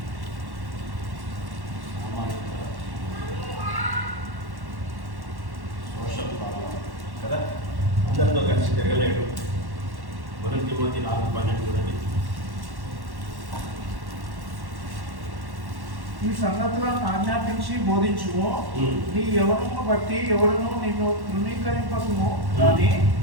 సోషల్ ప్రాబ్లం కదా, అందరితో కలిసి తిరగలేడు. 1 తిమోతి 4:12 చూడండి. ఈ సంగతులను ఆజ్ఞాపించి బోధించుము. నీ యవ్వనమును బట్టి ఎవడును నిన్ను తృణీకరింపకుము, కానీ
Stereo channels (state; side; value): late; left; 1.1 ms